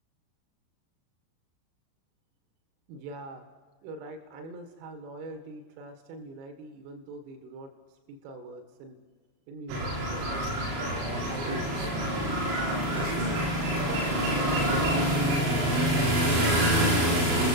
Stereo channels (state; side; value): late; left; 36 ms